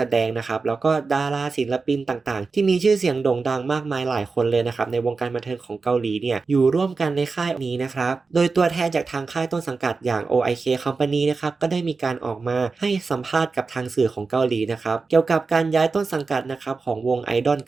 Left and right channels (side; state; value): left; quieter; 4.3 dB